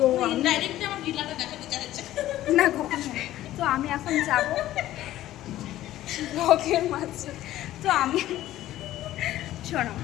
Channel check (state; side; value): quieter; right; 14.2 dB